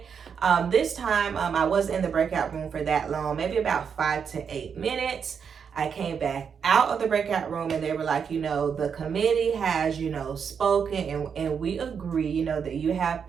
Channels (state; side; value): quieter; left; 6.8 dB